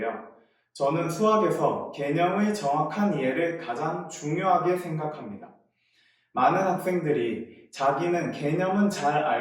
저는 수학에서 개념의 정확한 이해를 가장 중요하게 생각합니다. 많은 학생들이 자기는 개념은 잘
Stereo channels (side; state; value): both; identical; correlation 1.00